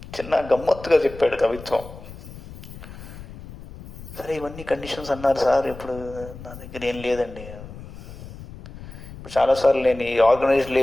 చిన్న గమ్మత్తుగా చెప్పాడు కవిత్వం. సరే, ఇవన్నీ కండిషన్స్ అన్నారు సార్, ఇప్పుడు నా దగ్గర ఏం లేదండి. ఇప్పుడు చాలాసార్లు నేను ఈ ఆర్గనైజ్డ్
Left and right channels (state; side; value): noise; left; rumble, 15 dB below the sound